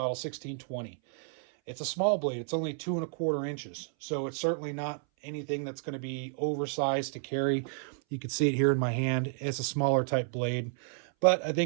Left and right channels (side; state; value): left; silent; 57 dB below the other